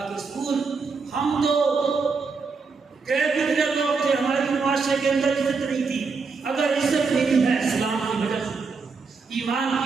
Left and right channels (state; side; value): quieter; left; 4.7 dB